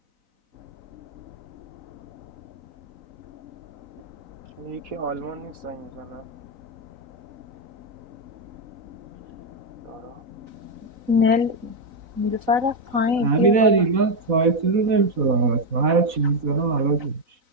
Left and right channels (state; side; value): late; left; 4.1 ms